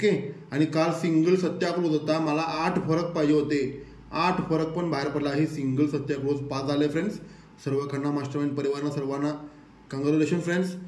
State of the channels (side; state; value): both; identical; correlation 1.00